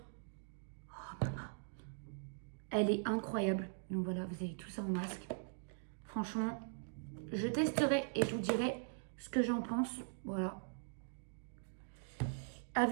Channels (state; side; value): silent; left; digital silence